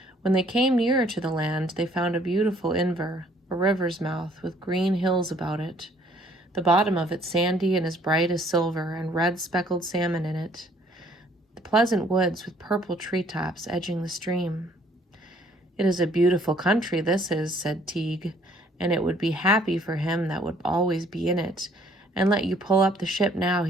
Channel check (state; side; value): normal; both; correlation 0.61